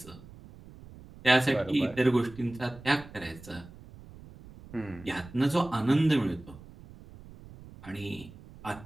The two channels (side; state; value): right; noise; rumble, 19 dB below the sound